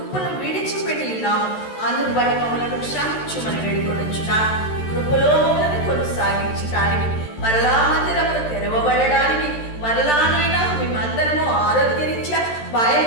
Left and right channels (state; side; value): late; right; 13 ms